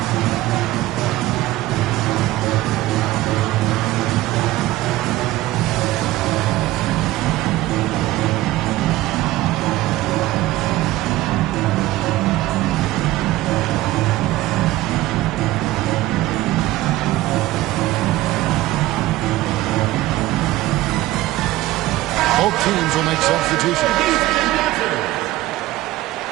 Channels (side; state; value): left; quieter; 16.7 dB